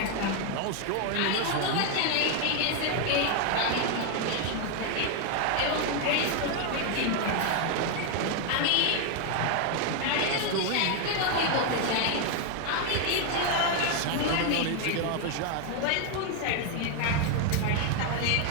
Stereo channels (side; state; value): both; different; correlation 0.01